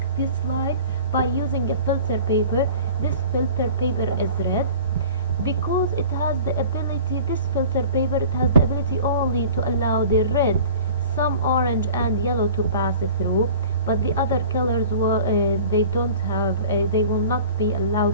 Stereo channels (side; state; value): both; inverted; correlation -0.43